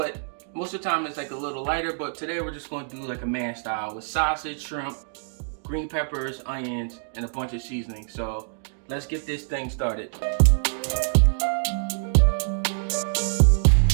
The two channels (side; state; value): left; silent; digital silence